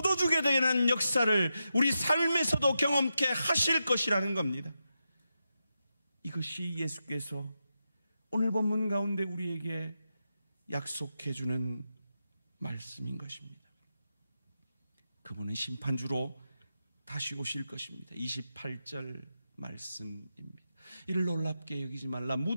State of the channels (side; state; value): both; inverted; correlation -0.88